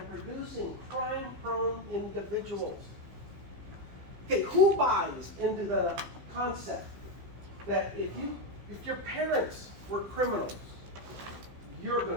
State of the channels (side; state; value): left; late; 15 ms